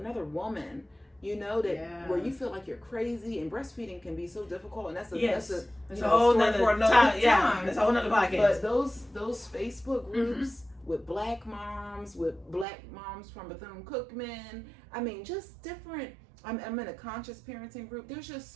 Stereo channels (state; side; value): drops out; left; at 12.7 s